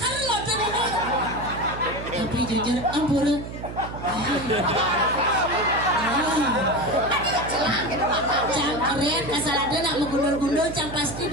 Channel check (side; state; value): right; noise; hum, 10 dB below the sound